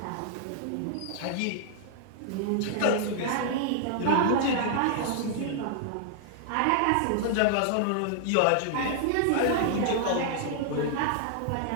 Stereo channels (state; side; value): different; both; correlation -0.01